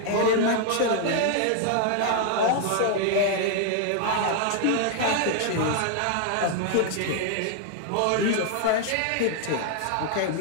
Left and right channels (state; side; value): different; both; correlation 0.00